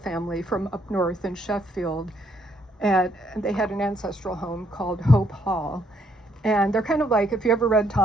from up north in Sheffield, and they had an ancestral home called Hope Hall. And they're kind of like, if you ever read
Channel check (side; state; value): both; normal; correlation 0.70